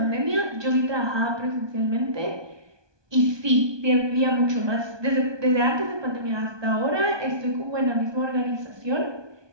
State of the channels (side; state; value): left; late; 1.2 ms